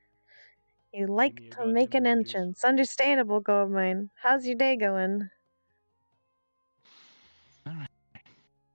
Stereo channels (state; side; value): inverted; both; correlation -1.00